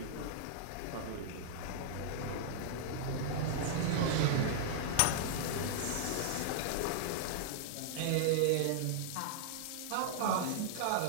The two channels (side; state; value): both; different; correlation -0.01